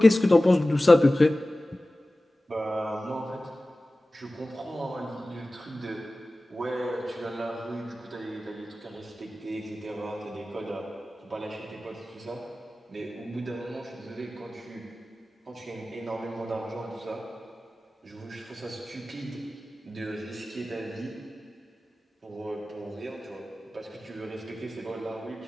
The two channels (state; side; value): normal; both; correlation 0.96